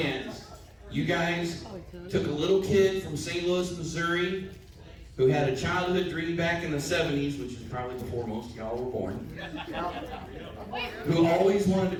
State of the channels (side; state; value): both; identical; correlation 1.00